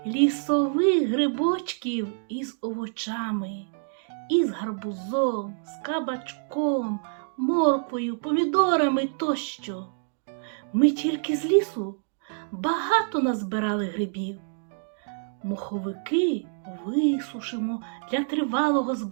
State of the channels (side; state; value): left; silent; digital silence